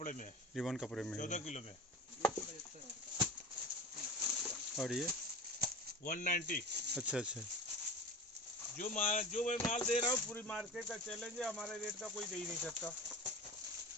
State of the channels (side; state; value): both; normal; correlation 0.33